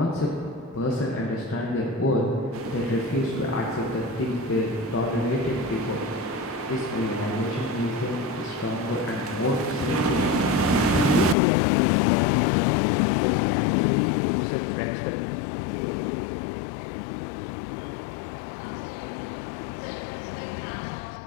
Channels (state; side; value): drops out; right; at 11.4 s